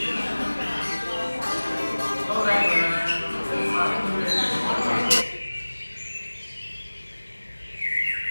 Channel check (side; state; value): both; inverted; correlation -1.00